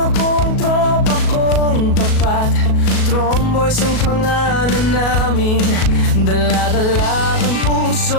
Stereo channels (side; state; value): right; late; 37 ms